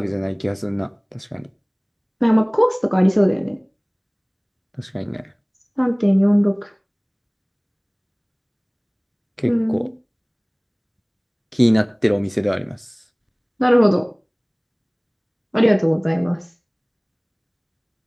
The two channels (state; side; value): identical; both; correlation 1.00